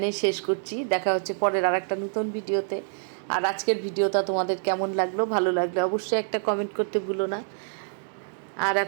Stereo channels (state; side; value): silent; left; 61 dB below the other